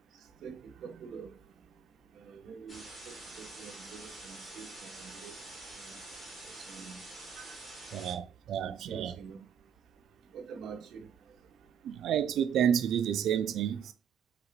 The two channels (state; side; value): quieter; left; 8.3 dB